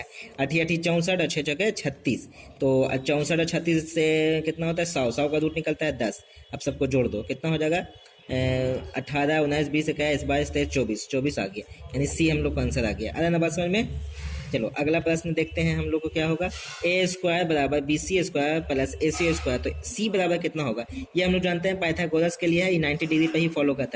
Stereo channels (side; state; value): both; identical; correlation 1.00